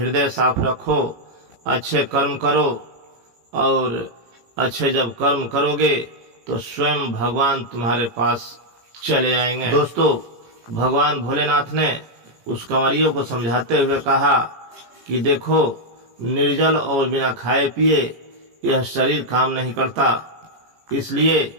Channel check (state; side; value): late; left; 18 ms